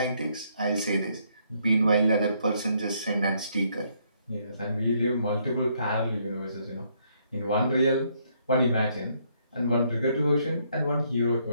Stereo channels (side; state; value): both; inverted; correlation -0.71